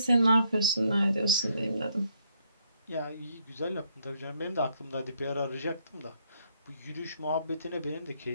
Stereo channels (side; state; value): both; inverted; correlation -0.72